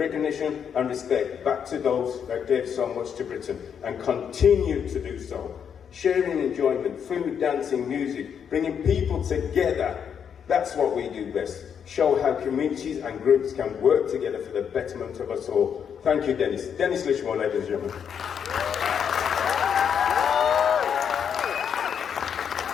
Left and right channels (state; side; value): quieter; right; 7.7 dB